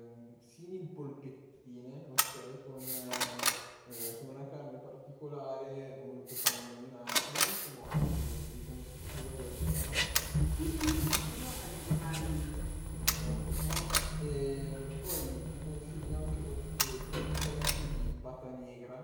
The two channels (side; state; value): both; identical; correlation 1.00